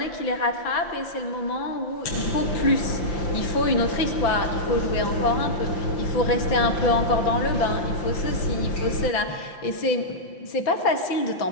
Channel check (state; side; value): late; right; 6.0 ms